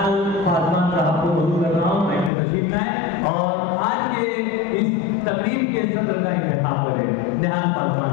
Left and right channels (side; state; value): right; drops out; at 2.3 s